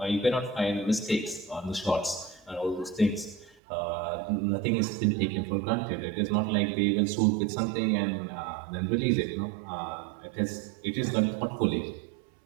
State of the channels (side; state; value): left; drops out; at 3.6 s